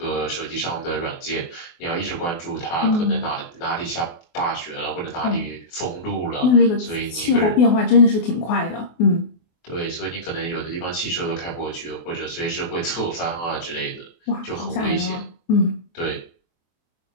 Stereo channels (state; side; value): late; right; 24 ms